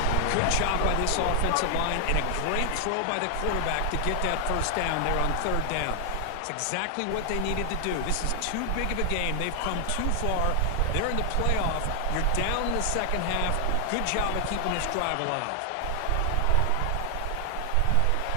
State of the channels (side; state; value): both; different; correlation 0.00